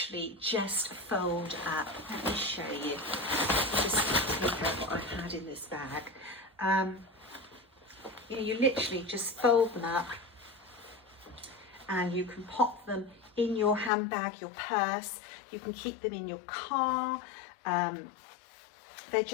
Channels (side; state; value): right; drops out; at 13.9 s